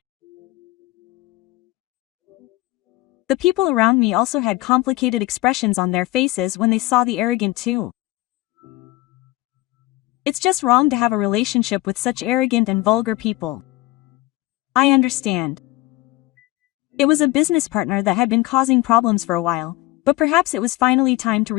The people around me also had complicated expressions on their faces when they saw the arrogant too. It's just wrong to have a relationship with such arrogant and vulgar people. I understand. It was a business partner that had been causing problems for a while, but perhaps it was finally time to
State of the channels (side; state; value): right; quieter; 18.4 dB